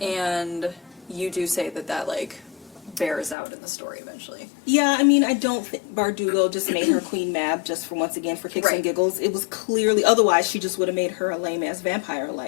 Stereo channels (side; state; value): right; drops out; at 3.4 s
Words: And you do say that like bears out in the story eventually. Yeah, I mean, I don't think Bardugo just made her Queen Mab just for once again for kicks and giggles. It was clearly, otherwise she just would have made her a lame ass vampire